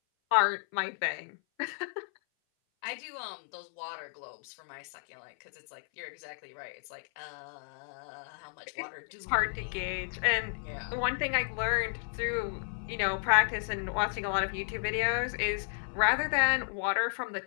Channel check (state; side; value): silent; right; 56 dB below the other